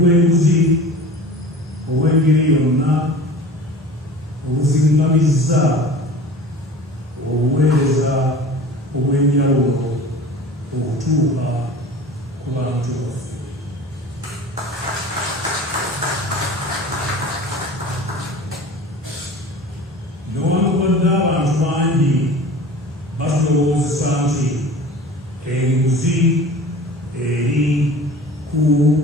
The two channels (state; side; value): normal; both; correlation 0.39